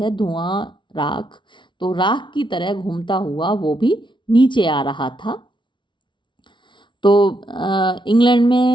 धुआं, राख, तो राख की तरह घूमता हुआ वो भी नीचे आ रहा था। तो इंग्लैंड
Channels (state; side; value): late; right; 0.24 ms